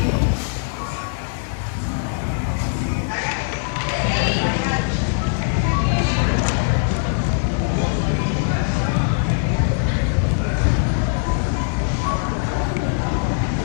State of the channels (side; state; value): right; silent; 58 dB below the other